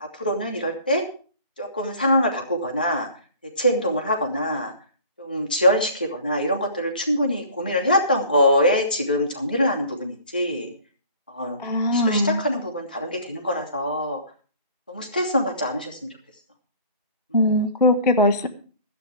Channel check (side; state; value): both; inverted; correlation -0.48